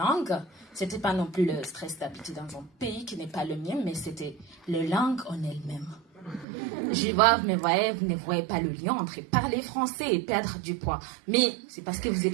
c'était pas non plus le stress d'habiter dans un pays qui n'est pas le mien, mais c'était la langue en elle-même. Je vois, vous ne voyez pas le lien entre parler français et perdre du poids. Mais c'est parce que vous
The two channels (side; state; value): left; drops out; at 6.5 s